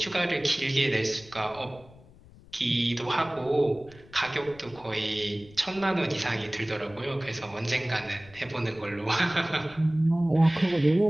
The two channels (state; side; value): noise; left; rumble, 23 dB below the sound